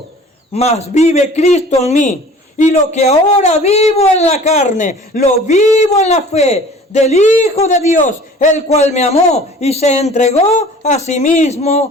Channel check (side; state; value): both; normal; correlation 0.46